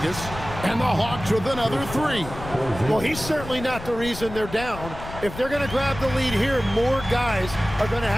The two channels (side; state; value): left; noise; rumble, 11 dB below the sound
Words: and the Hawks with another three. Well, he's certainly not the reason they're down. If they're going to grab the lead here, more guys are going to